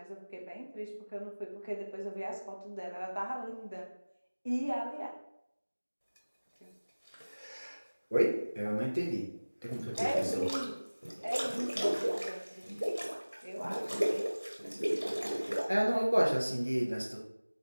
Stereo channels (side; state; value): both; inverted; correlation -1.00